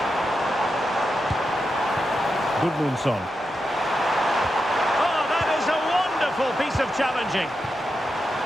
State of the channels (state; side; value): normal; both; correlation 0.87